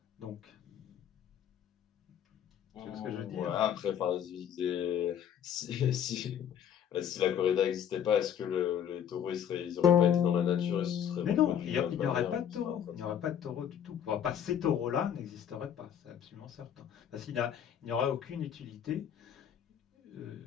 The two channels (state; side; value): quieter; right; 9.1 dB